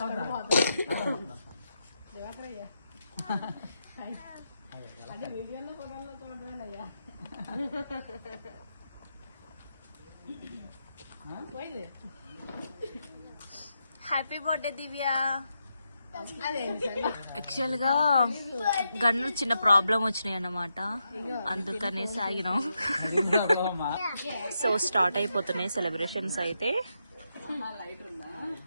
హ్యాపీ బర్త్డే దివ్య. యాక్చువల్ గా గన్ను చిన్న ప్రాబ్లం వచ్చినాయి అన్నమాట, అందుకనే సాగినాం. సో స్టార్ట్ అయిపోతున్నాయి సెలబ్రేషన్స్ అయితే.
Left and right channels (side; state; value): both; inverted; correlation -0.84